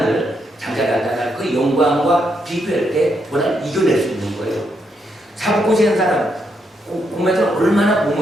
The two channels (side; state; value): both; normal; correlation 0.78